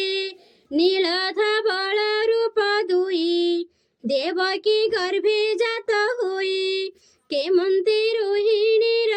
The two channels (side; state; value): both; identical; correlation 1.00